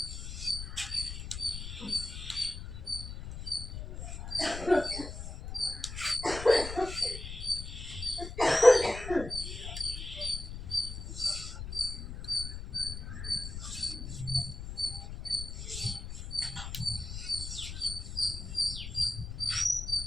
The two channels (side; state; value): left; noise; rumble, 8 dB below the sound